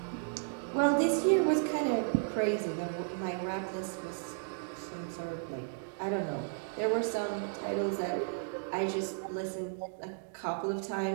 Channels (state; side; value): silent; left; digital silence